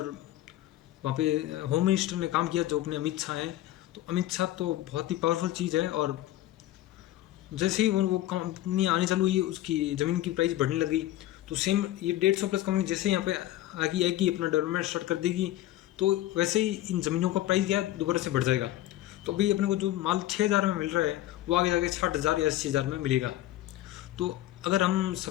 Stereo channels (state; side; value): quieter; right; 14.7 dB